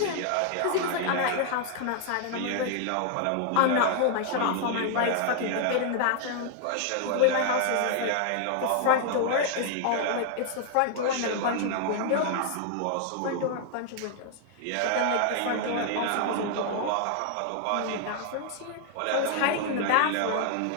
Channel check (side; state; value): both; different; correlation 0.00